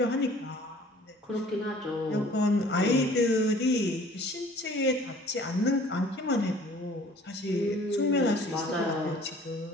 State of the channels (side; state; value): both; normal; correlation 0.52